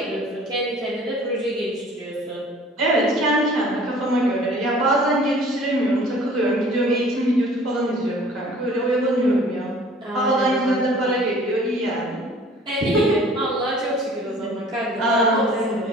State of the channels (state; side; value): normal; both; correlation 0.50